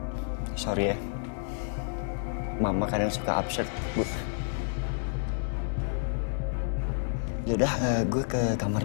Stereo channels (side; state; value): right; silent; 58 dB below the other